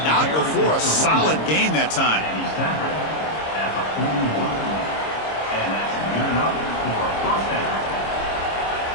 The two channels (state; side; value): late; right; 26 ms